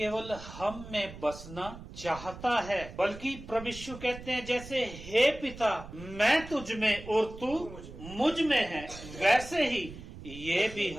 हम में बसना चाहता है, बल्कि प्रभु यीशु कहते हैं, जैसे हे पिता मैं तुझ में और तू मुझ में है, वैसे ही ये भी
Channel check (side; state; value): right; noise; rumble, 14 dB below the sound